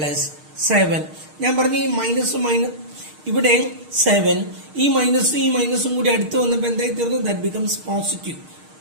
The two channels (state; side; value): late; left; 6.5 ms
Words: ഞാൻ പറഞ്ഞു ഈ മൈനസും ഇവിടെ 7, ഈ മൈനസും കൂടി അടുത്ത് വന്നപ്പോൾ എന്തായി തീർന്നു? That becomes positive.